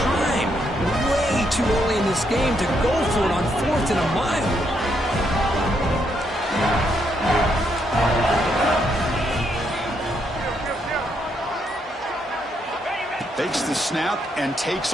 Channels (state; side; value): normal; both; correlation 0.76